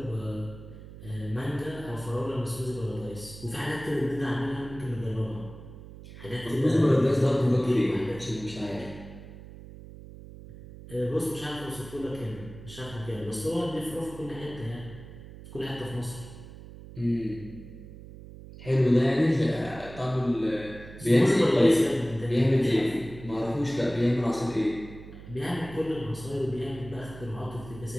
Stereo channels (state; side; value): noise; right; hum, 15 dB below the sound